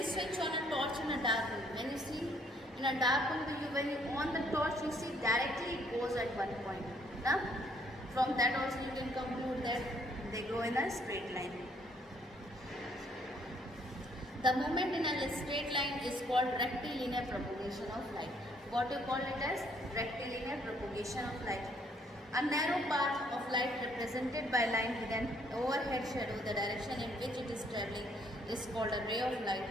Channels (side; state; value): both; normal; correlation 0.66